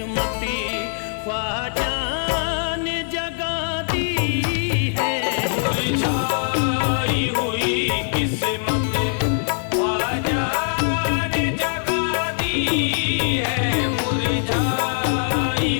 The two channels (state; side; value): silent; right; digital silence